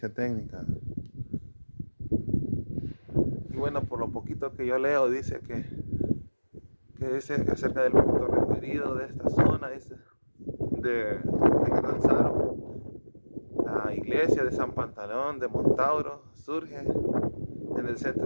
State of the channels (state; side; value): inverted; both; correlation -1.00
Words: técnica. Y bueno, por lo poquito que yo leo, dice que es acerca del punto referido de esta zona, dice, de Catanzaro. La iglesia de San Pantaleón de Montauro surge en el